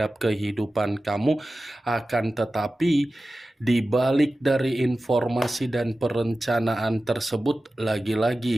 kehidupan kamu, akan tetapi di balik dari informasi dan perencanaan tersebut,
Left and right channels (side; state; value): both; normal; correlation 0.95